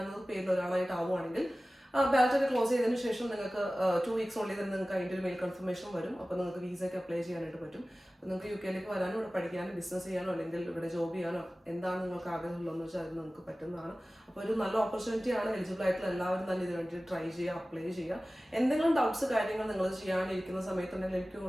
പേരിൽ ഒരാളായിട്ട് ആവുകയാണെങ്കിൽ ബാലറ്റ് ഒക്കെ ക്ലോസ് ചെയ്തതിന് ശേഷം നിങ്ങൾക്ക് 2 വീക്സ് ഉള്ളിൽ തന്നെ നിങ്ങൾക്ക് അതിൻ്റെ ഒരു മെയിൽ കൺഫർമേഷൻ വരും. അപ്പോൾ നിങ്ങൾക്ക് വിസയ്ക്ക് അപ്ലൈ ചെയ്യാനായിട്ട് പറ്റും. അപ്പോൾ നിങ്ങൾക്ക് UK വരാനോ ഇവിടെ പഠിക്കാനോ ബിസിനസ് ചെയ്യാനോ അല്ലെങ്കിൽ ഇവിടെ ജോബ് ചെയ്യാനോ എന്താണ് നിങ്ങൾക്ക് ആഗ്രഹമുള്ളതെന്ന് വെച്ചാൽ അത് നിങ്ങൾക്ക് പറ്റുന്നതാണ്. അപ്പോൾ ഒരു നല്ല ഓപ്പർച്യൂണിറ്റിയാണ്. എലിജിബിൾ ആയിട്ടുള്ള എല്ലാവരും തന്നെ ഇതിന് വേണ്ടി ട്രൈ ചെയ്യുക, അപ്ലൈ ചെയ്യുക. എന്തെങ്കിലും ഡൗട്ട്സ് കാര്യങ്ങൾ നിങ്ങൾ ചെയ്യാനിരിക്കുന്ന സമയത്തുണ്ടെങ്കിൽ എനിക്ക്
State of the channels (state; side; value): normal; both; correlation 0.97